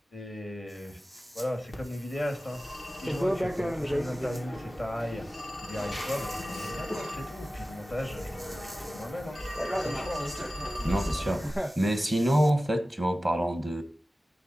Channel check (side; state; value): both; normal; correlation 0.96